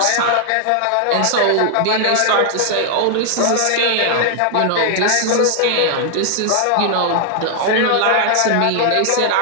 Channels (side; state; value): both; different; correlation 0.00